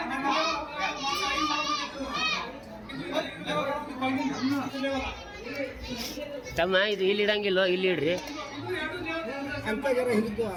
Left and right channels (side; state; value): both; identical; correlation 1.00